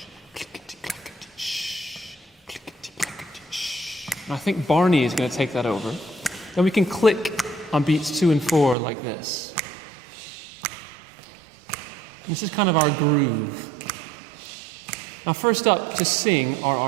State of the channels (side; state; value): left; drops out; at 8.8 s